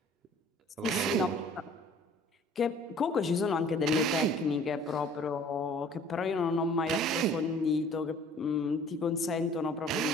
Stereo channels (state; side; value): normal; both; correlation 0.51